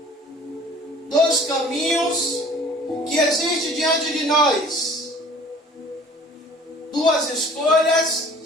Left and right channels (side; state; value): both; normal; correlation 0.49